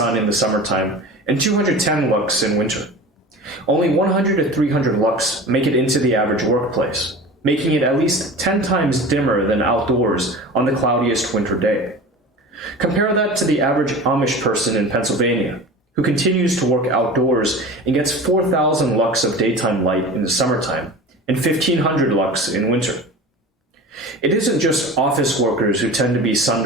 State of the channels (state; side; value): normal; both; correlation 0.35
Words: in the summertime, and 210 lux in winter. Only 100 to 300 lux make it into the average workplace, making it at least 10 times dimmer than outdoors on the cloudiest winter day. Compare that to the average Amish person in Pennsylvania, who continues to work outdoors and gets 4,000 lux of daytime light in the summertime and 1,500 lux in winter. It isn't just office workers who tend to be